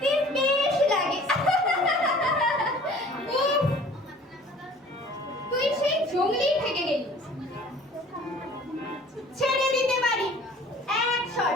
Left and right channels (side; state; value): both; normal; correlation 0.49